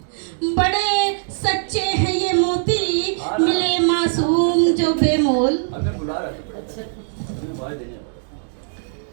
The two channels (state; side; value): silent; left; digital silence